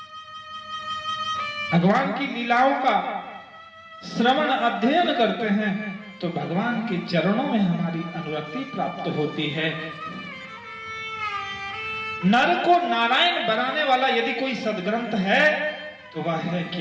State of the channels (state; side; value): identical; both; correlation 1.00